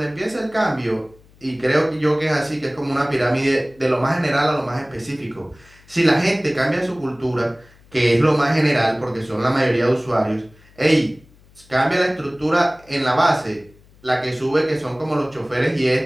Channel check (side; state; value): left; noise; hum, 28 dB below the sound